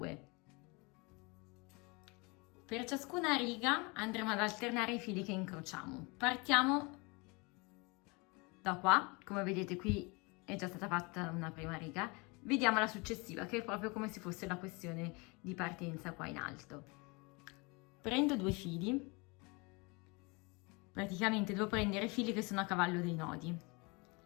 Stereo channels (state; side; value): quieter; right; 28.3 dB